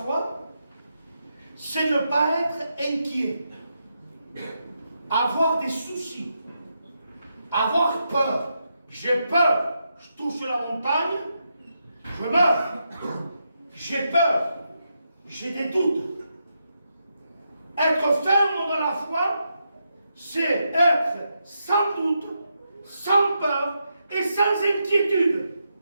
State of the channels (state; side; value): inverted; both; correlation -0.83